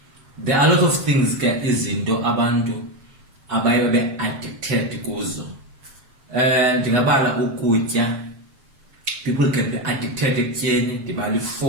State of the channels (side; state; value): left; late; 7.5 ms